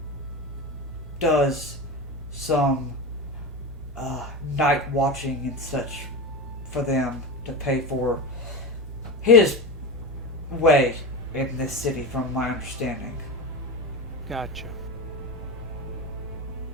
does some night watching and such for them to pay for his way in this city, from my understanding. Gotcha.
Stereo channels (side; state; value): both; normal; correlation 0.22